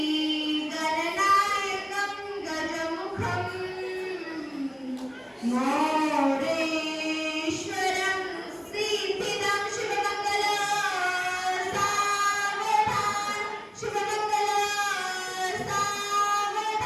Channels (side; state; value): both; identical; correlation 1.00